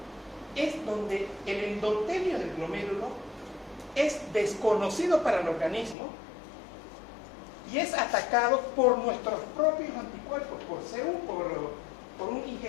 es donde el endotelio del glomérulo es desconocido para el organismo y es atacado por nuestros propios anticuerpos, por CU, por un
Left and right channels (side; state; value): right; drops out; at 6.0 s